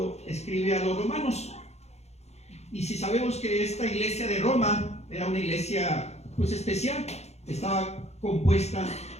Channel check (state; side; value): late; right; 0.31 ms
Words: escribe a los romanos. Y si sabemos que esta iglesia de Roma era una iglesia pues especial, estaba compuesta